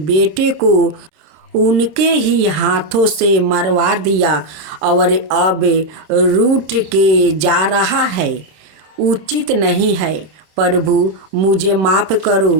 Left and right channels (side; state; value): left; late; 26 ms